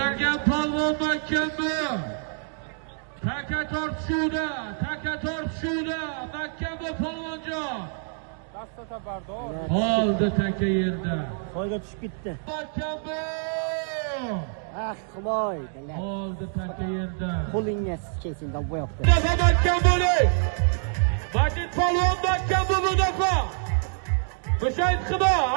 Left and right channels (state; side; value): silent; left; 61 dB below the other